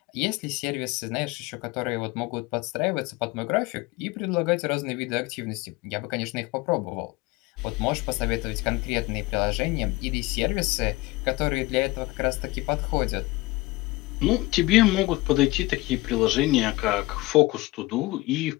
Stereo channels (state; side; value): quieter; right; 21.1 dB